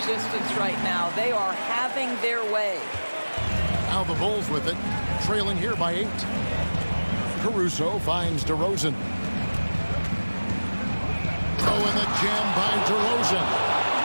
right now. They are having their way. Now the Bulls with it, trailing here by 8. Caruso finds DeRozan. Oh, and the jam by DeRozan.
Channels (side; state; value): both; inverted; correlation -1.00